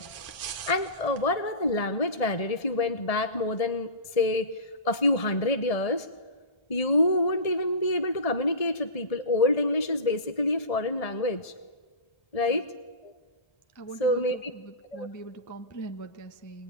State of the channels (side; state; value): right; late; 1.7 ms